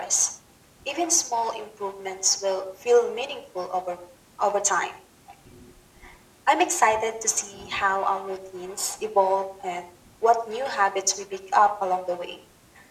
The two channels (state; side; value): identical; both; correlation 1.00